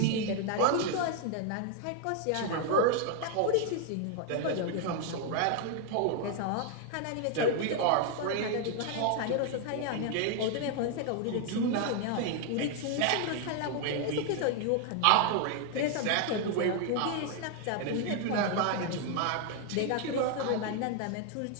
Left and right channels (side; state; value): both; different; correlation 0.00